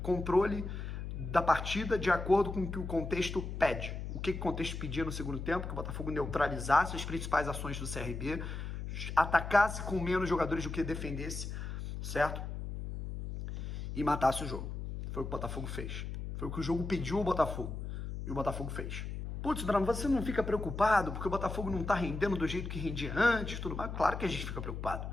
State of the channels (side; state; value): left; noise; hum, 6 dB below the sound